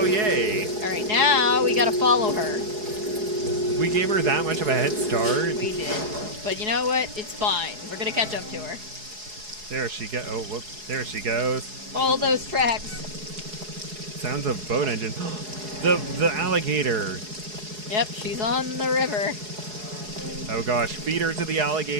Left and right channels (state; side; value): late; left; 4.7 ms